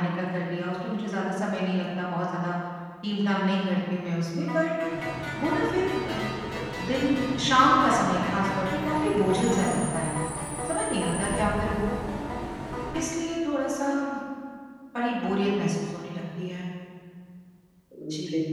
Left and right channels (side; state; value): both; identical; correlation 1.00